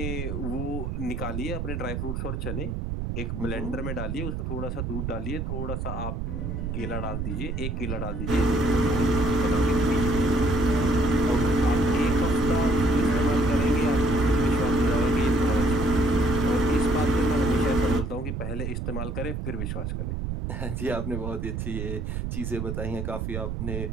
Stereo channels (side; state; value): right; noise; rumble, 3 dB below the sound